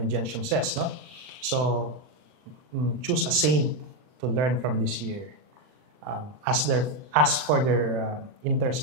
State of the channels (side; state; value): left; late; 39 ms